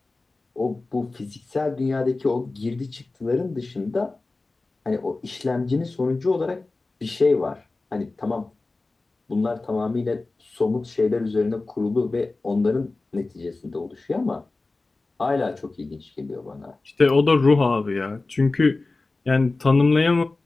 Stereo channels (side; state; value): right; quieter; 3.4 dB